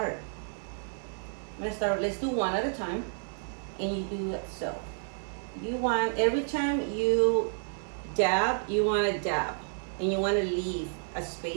Let's do one at a time, and you do it so. You want every time you dab, you want to dab. and you want to leave a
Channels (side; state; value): left; silent; 57 dB below the other